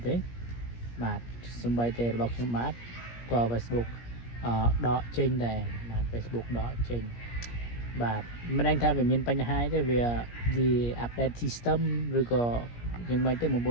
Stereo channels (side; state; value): right; late; 17 ms